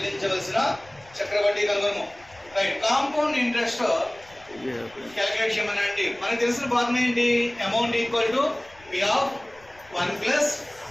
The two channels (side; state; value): left; noise; rumble, 27 dB below the sound